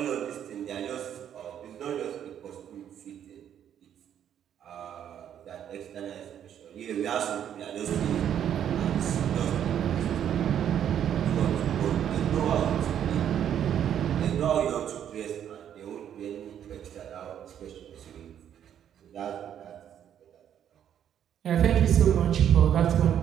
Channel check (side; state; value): left; quieter; 9.7 dB